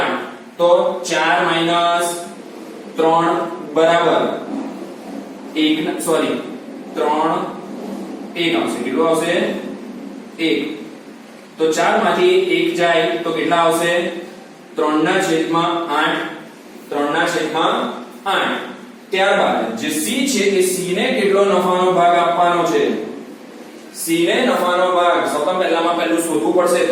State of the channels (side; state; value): both; identical; correlation 1.00